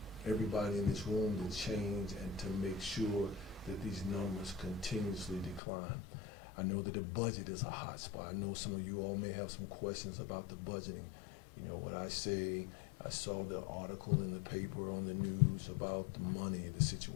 everybody in this room to change and to make sure that these numbers continuously decline. I know that the budget is a hot spot. I know some of you all may have some questions about the budgeting. You know, what I say, I saw the article in the paper on the news about the money, the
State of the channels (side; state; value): right; drops out; at 5.6 s